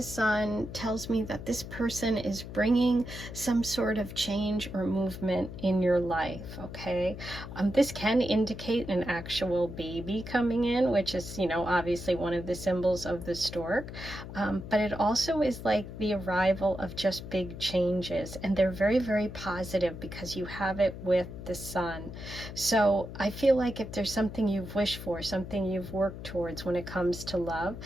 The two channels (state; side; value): noise; left; hum, 10 dB below the sound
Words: sun tells me that this person is bringing some sort of change or movement in your life, okay? This can indicate an actual baby coming in, which is, you know, obviously one of the symbols of the stork. But it also is like the arrival of just big changes. And they're very, very positive because you have it with the sun. So I feel like if there's something you've wished for, something you've worked towards when it comes to love,